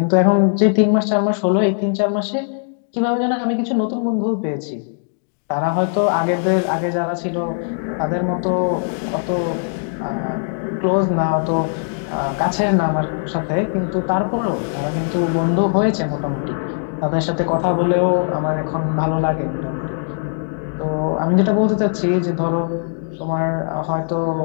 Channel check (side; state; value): right; silent; 66 dB below the other